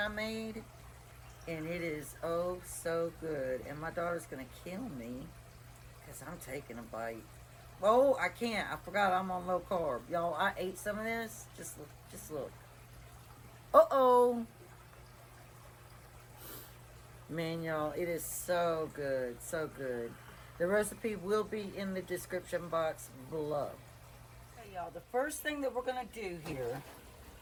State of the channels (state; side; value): identical; both; correlation 1.00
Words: made. And it is oh so good. And my daughter's going to kill me because I'm taking a bite. Oh, I can't. I forgot I'm on low carb. Y'all, I ate some of this. Just look. Just look. Uh-oh. Man, y'all, it is so good. So good. The recipe will be in the description box below. Okay, y'all, the first thing that we're going to do here,